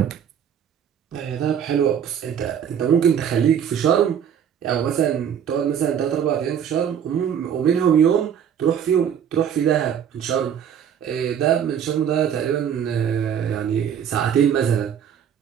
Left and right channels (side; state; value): left; quieter; 8.6 dB